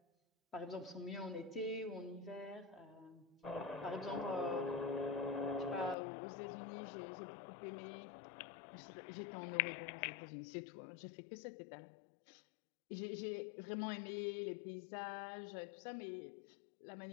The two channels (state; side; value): drops out; right; at 6.0 s